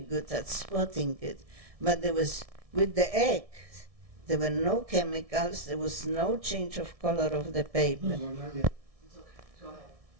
at spotting it, but with the egg, there were no chemicals, there was no change of color of the paper. It's okay. Go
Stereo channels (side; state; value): left; late; 1.6 ms